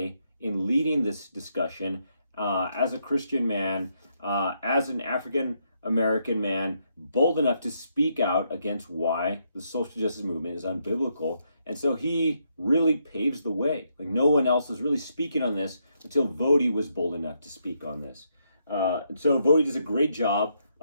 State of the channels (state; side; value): inverted; both; correlation -0.77